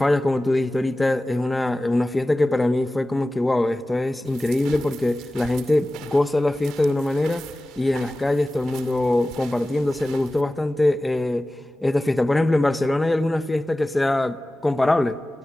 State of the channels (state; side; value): normal; both; correlation 0.96